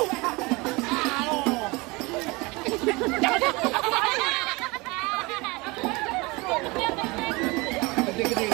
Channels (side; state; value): left; quieter; 24.9 dB